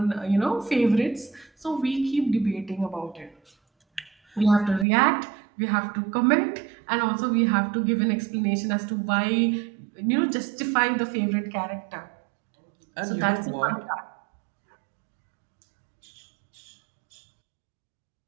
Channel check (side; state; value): left; drops out; at 4.9 s